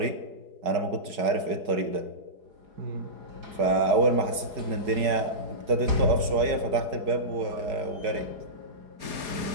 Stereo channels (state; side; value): late; left; 4.7 ms